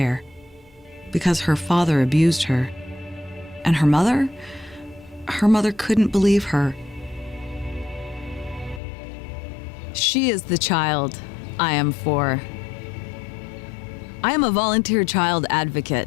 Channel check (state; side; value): drops out; right; at 8.8 s